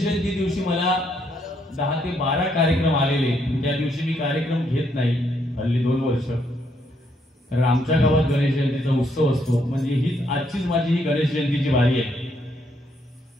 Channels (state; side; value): normal; both; correlation 0.73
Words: जयंती दिवशी मला 10 ते 12 कार्यक्रम आलेले. त्या दिवशी मी कार्यक्रम घेत नाही हल्ली 2 वर्ष. कारण आमच्या गावात गणेश जयंतीचा उत्सव असतो. म्हणजे हीच आजचीच माझी ही गणेश जयंतीची वारी आहे.